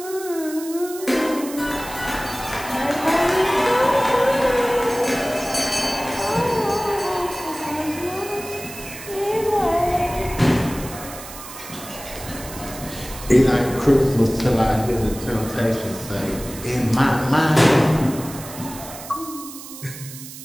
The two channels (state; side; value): noise; right; hiss, 13 dB below the sound